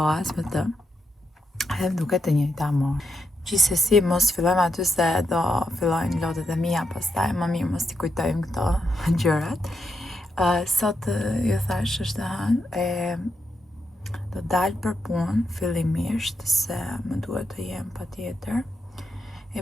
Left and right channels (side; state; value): both; normal; correlation 0.84